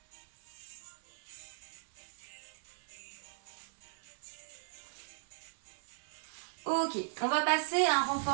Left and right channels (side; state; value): left; silent; 52 dB below the other